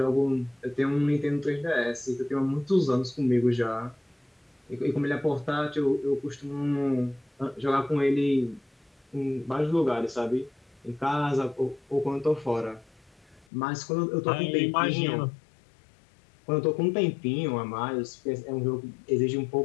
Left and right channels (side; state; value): right; drops out; at 13.5 s